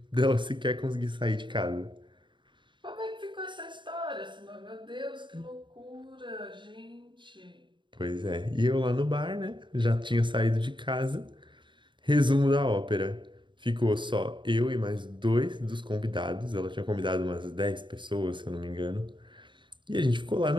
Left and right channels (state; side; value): late; left; 0.23 ms